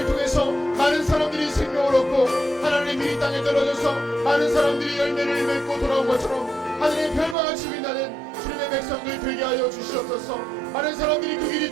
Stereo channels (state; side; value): drops out; left; at 7.4 s